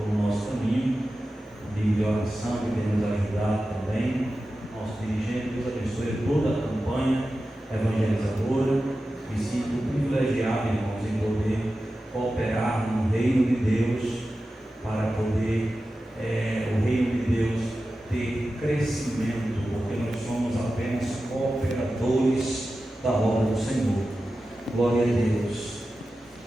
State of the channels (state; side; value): normal; both; correlation 0.93